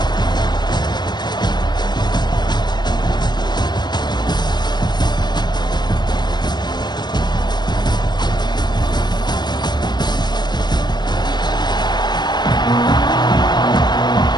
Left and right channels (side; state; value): right; late; 0.21 ms